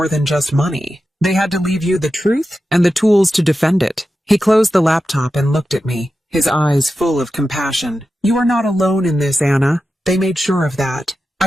than just money. They had to leave you the truth and the tools to defend it." He closed the laptop and looked at me, his eyes full of compassion. "You are not alone in this, Anna. They made sure of that."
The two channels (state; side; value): normal; both; correlation 0.91